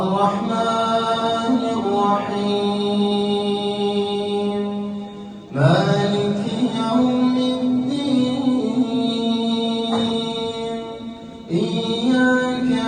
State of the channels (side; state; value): both; identical; correlation 1.00